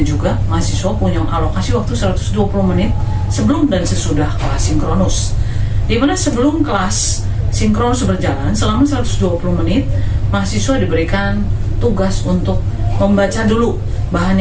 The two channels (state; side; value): identical; both; correlation 1.00